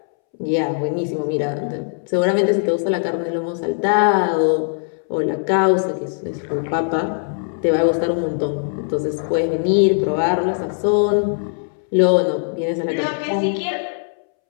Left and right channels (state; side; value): silent; right; 65 dB below the other